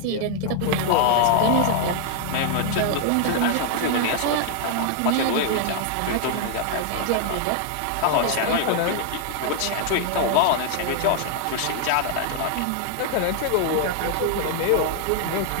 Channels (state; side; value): different; both; correlation 0.00